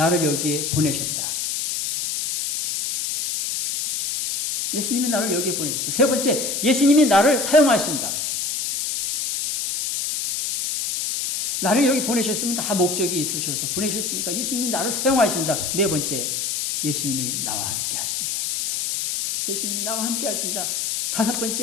여기에 보내셨다. 예수님이 나를 여기에 보내셨다. 세 번째, 예수님이 나를 사용하신다. 나를 여기 보내셨으면 다 목적이 있으셔서 보내셨으니까 예수님이 나를 사용하신다. 네 번째, 예수님이 나와 함께 하신다. 예수님이 나와 함께 하신다. 다섯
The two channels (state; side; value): noise; left; hiss, 2 dB below the sound